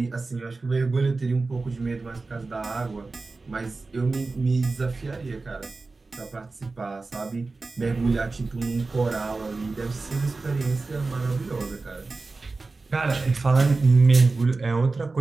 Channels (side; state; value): left; quieter; 3.7 dB